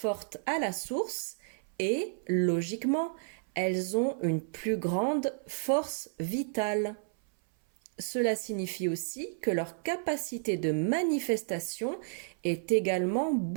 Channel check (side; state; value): left; silent; 57 dB below the other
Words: à la source et, logiquement, elles ont une plus grande force vitale. Cela signifie aussi que leur capacité de manifestation est également